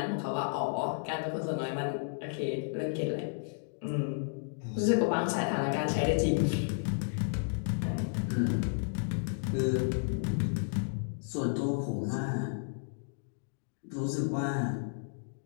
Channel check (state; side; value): silent; right; digital silence